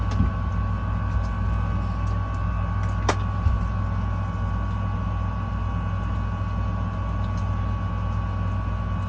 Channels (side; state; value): both; identical; correlation 1.00